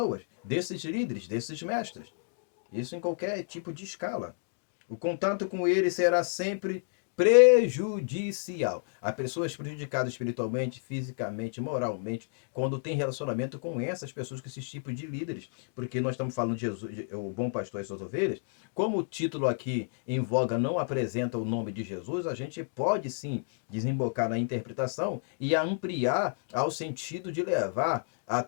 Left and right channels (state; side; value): silent; right; digital silence